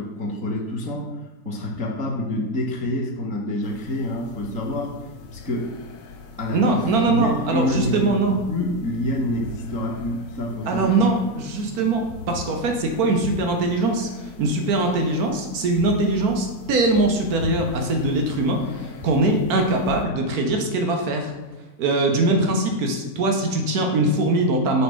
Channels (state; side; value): late; left; 4.5 ms